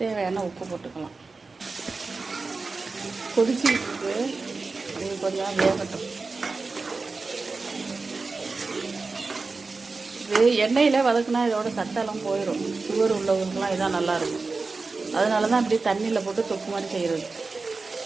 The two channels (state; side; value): quieter; left; 4.0 dB